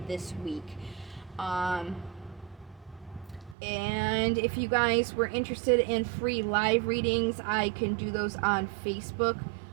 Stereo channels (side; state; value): left; drops out; at 3.6 s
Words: this week. And if you guys were interested in free live readings, I can do those on Facebook.